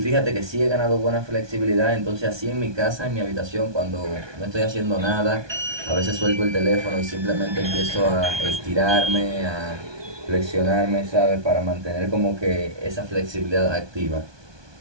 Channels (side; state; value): left; late; 1.2 ms